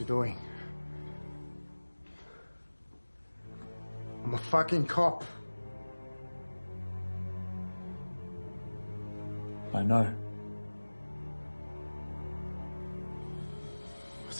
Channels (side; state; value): both; inverted; correlation -1.00